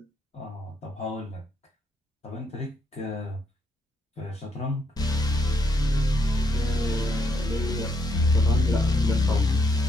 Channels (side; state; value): both; normal; correlation 0.76